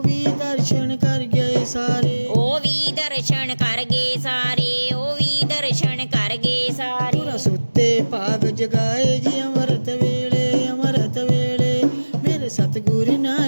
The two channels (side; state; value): both; inverted; correlation -1.00